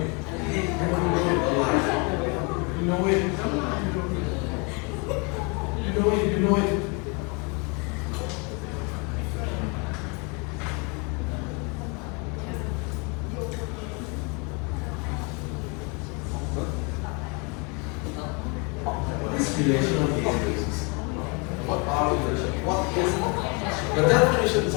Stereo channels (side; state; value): right; quieter; 32.2 dB